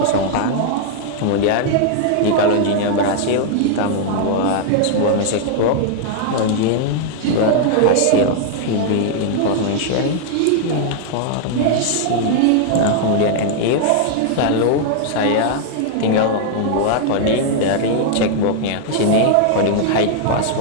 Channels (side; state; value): both; different; correlation 0.00